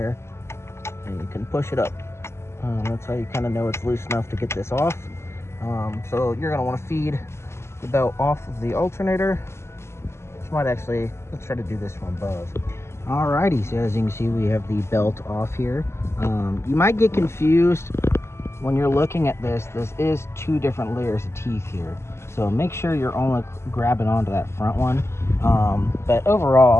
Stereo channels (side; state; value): right; late; 0.13 ms